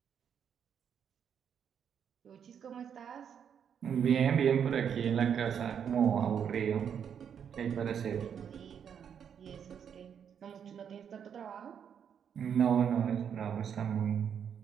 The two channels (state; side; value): quieter; left; 8.0 dB